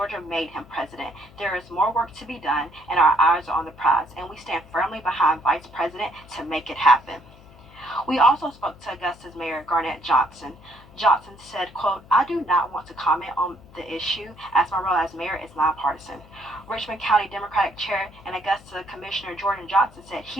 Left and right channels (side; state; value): left; noise; hum, 23 dB below the sound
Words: made him president. There is more work to be done, and our eyes are on the prize, and we stand firmly behind Vice President to make it happen. We also spoke to Augusta's Mayor Garnett Johnson. Johnson said, quote, I do not want to comment on the issue as my role as mayor is nonpartisan. Richmond County Democratic Chair and Augusta Commissioner Jordan Johnson said